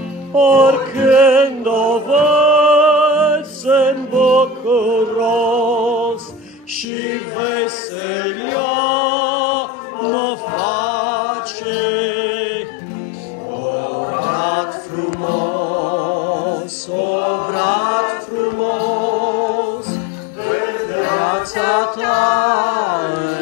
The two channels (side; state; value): right; drops out; at 6.9 s